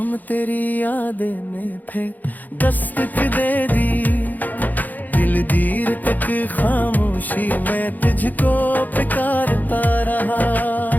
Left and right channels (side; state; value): right; late; 0.083 ms